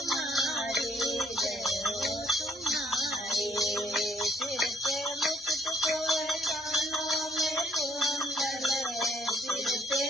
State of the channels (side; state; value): both; normal; correlation 0.65